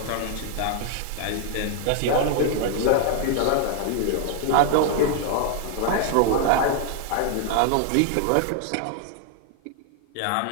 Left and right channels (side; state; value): both; different; correlation 0.00